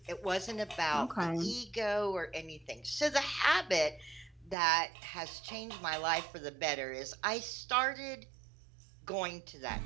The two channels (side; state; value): left; drops out; at 4.5 s